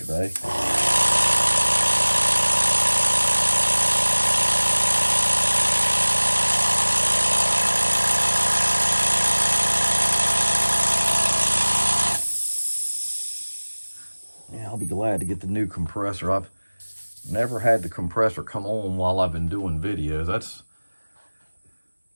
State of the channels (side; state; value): both; inverted; correlation -1.00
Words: I'll be glad to get the new compressor. I've never had the compressor come on while I've been doing videos.